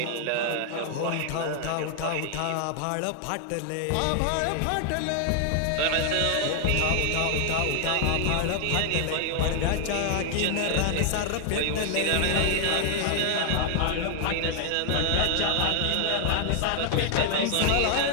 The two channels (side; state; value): both; different; correlation 0.00